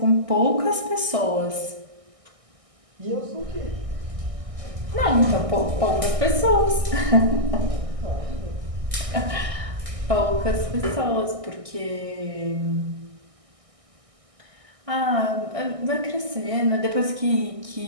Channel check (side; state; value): left; late; 1.6 ms